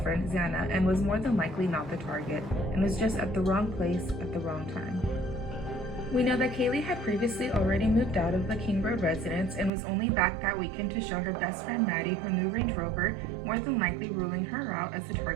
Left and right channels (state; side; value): drops out; left; at 9.7 s